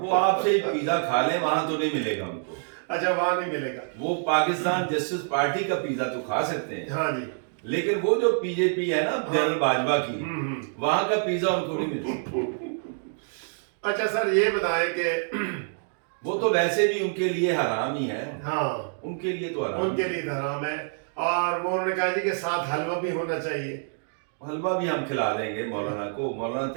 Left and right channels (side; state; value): left; silent; digital silence